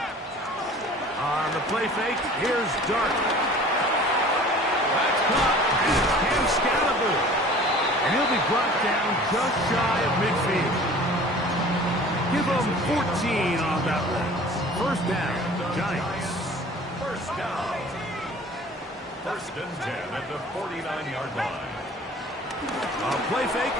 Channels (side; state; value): both; normal; correlation 0.46